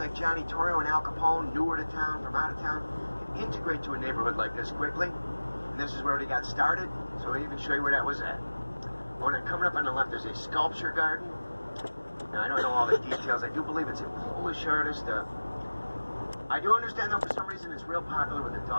Johnny Torrio and Al Capone, newer to town, from out of town, could integrate to a neighborhood like this quickly. And this is where they got started, so I'll even show you where that was at. Oh, and then coming up on the left, there's a sculpture garden. Now, I don't know all the details. I do believe it's a Polish artist. I do understand, though, for some reason, it's real popular with the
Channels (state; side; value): inverted; both; correlation -1.00